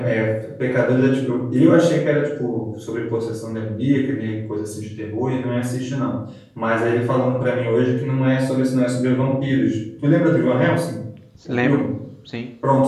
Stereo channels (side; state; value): both; identical; correlation 1.00